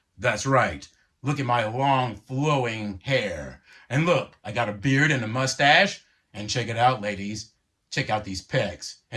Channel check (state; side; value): identical; both; correlation 1.00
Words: That's right. Look at my long, flowing hair. And look, I got a beard and a mustache. And check it out, ladies. Check out these pecs